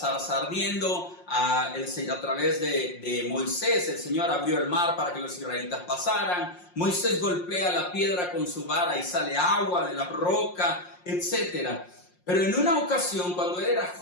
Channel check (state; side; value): late; right; 5.6 ms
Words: ardiendo, a través de Moisés el Señor abrió el mar para que los israelitas pasaran. Moisés golpea la piedra con su vara y sale agua de la roca, etc. Pero en una ocasión, cuando él era